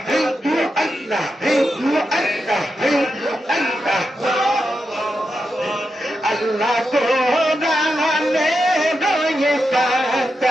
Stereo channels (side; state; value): both; normal; correlation 0.87